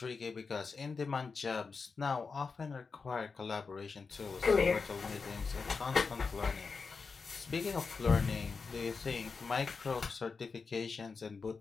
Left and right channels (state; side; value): quieter; right; 4.9 dB